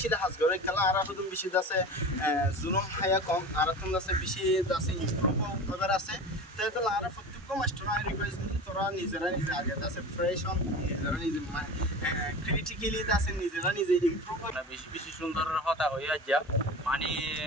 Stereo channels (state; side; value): normal; both; correlation 0.33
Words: hasgore kala ar hudum bishi da se zulum haya kom aratun da se bishi da se improve করার আছে hetalla ar প্রত্যেক master I request তোরা নিজেরা নিজে আগে da se fresh on critically আছে নিজেরা নিজে ইমপ্রুভ না বেশি বেশি সুন্দর হতা হইয়া যা মানে